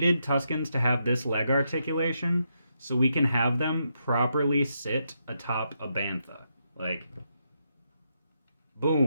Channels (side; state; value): both; inverted; correlation -0.81